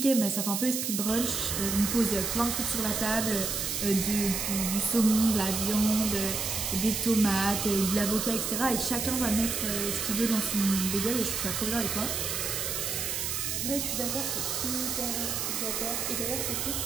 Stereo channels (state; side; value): noise; right; hiss, 1 dB below the sound